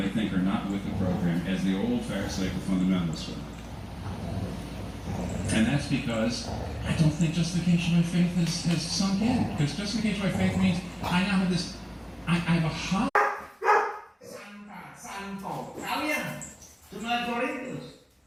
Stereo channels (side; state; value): both; identical; correlation 1.00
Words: think are not with the program, as the old Pharisaical fundamentalists were. And that's because I don't think justification by faith has sunk in. Because justification by faith means I now have this, I have a high. Santo kalian jemaat Korintus.